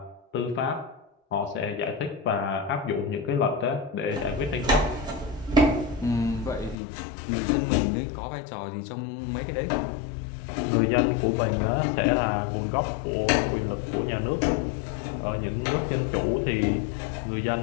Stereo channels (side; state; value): right; drops out; at 6.8 s